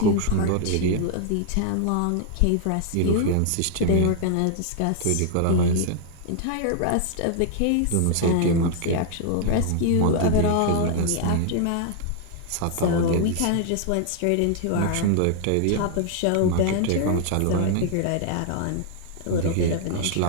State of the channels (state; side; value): different; both; correlation 0.00